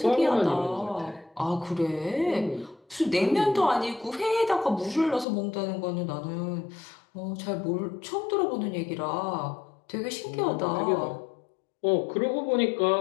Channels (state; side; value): drops out; right; at 5.2 s